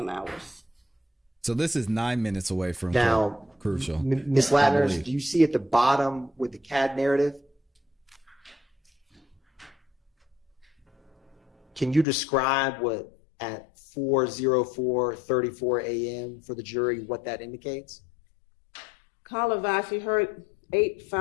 hours. So this is 9 minutes away from Now, Crucial. Ms. I Latners, believe. do you see at the bottom with the CAD narrative? Can you describe what at 4:04:34 a.m. for the jury, what that indicates? Caller advised he heard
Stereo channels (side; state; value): right; drops out; at 12.1 s